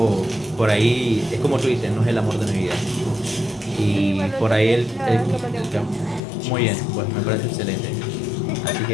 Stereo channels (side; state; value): right; drops out; at 6.2 s